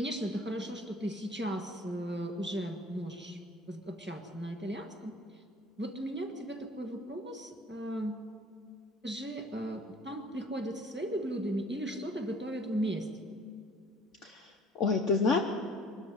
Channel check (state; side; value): normal; both; correlation 0.51